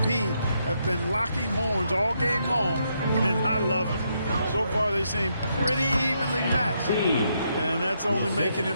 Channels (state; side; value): inverted; both; correlation -0.78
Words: have been locking horns all game long, and I love it. So far, they seem pretty evenly matched, and that's only making